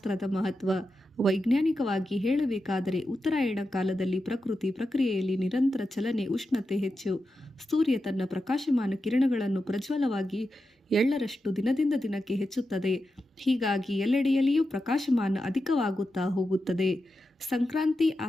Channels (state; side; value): normal; both; correlation 0.90